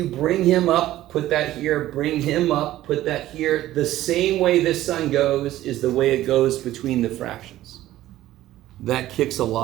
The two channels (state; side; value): quieter; left; 14.5 dB